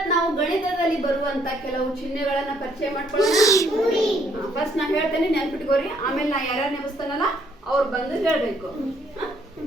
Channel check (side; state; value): both; normal; correlation 0.67